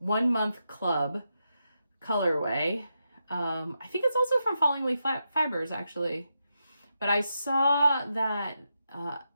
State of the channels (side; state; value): both; inverted; correlation -0.86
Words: month club colorway. I think it's also from Falling Leaf Fibers, actually. But I saw that